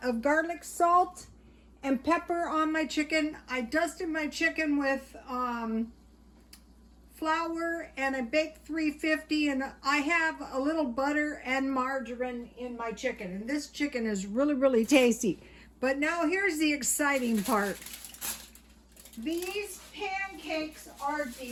of garlic salt and pepper on my chicken. I dusted my chicken with flour, and I baked 350, and I have a little butter and margarine in my chicken, and this chicken is really tasty. But now here's the exciting part. These pancakes are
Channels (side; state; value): both; identical; correlation 1.00